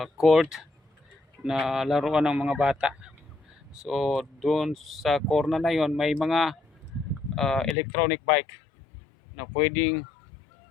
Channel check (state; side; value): drops out; right; at 7.8 s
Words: court na laruan ng mga bata. So doon sa corner na yon may mga electronic bike na pwedeng